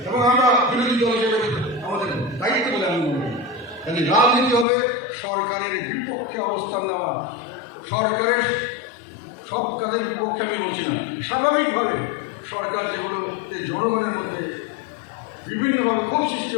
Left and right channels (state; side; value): drops out; right; at 4.7 s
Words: এবং আমরা বিরোধী দল হিসেবে আমাদের দায়িত্ব বলে আমি মনে করি। কাজে রাজনীতি হবে সরকারের বিপক্ষে অবস্থান নেওয়া। সরকারের সব কাজের বিপক্ষে আমি বলছি না, স্বাভাবিকভাবে সরকার যেগুলো জনগণের মধ্যে বিভিন্নভাবে ক্ষোভ সৃষ্টি